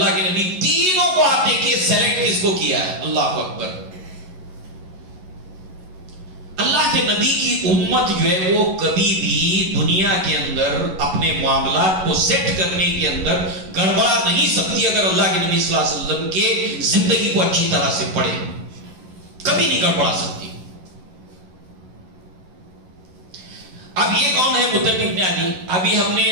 کے نبی تینوں کو آپ دیکھیے سیلیکٹ کس کو کیا ہے. اللہ اکبر. اللہ کے نبی کی امت جو ہے وہ کبھی بھی دنیا کے اندر اپنے معاملات کو سیٹ کرنے کے اندر گڑبڑا نہیں سکتی اگر اللہ کے نبی صلی اللہ علیہ وسلم کے زندگی کو اچھی طرح سے پڑھے. کبھی نہیں گڑبڑا سکتی. اب یہ کون ہے مطعم بن عدی؟ ابھی ہم نے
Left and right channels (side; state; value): left; late; 11 ms